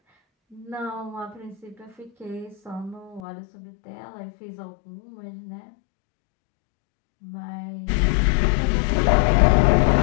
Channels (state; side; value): drops out; right; at 3.2 s